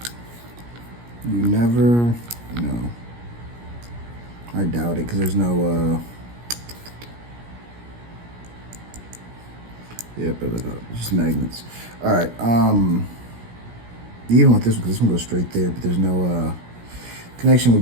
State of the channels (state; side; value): late; left; 17 ms